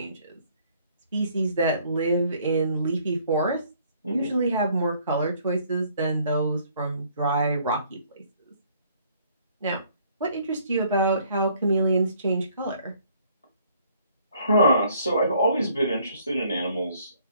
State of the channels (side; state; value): both; inverted; correlation -0.62